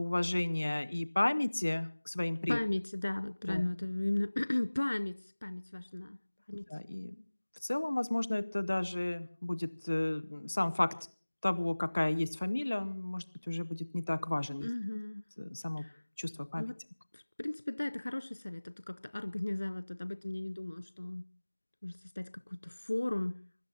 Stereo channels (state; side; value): inverted; both; correlation -1.00